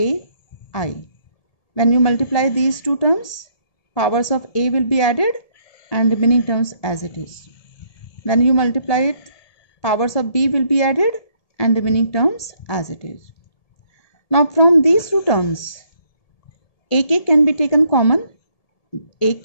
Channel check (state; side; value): late; right; 1.7 ms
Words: I. When you multiply these two terms, powers of A will be added and remaining terms as it is. When you multiply it, powers of B will be added and remaining terms as it is. Now from these two terms, AK can be taken common, AK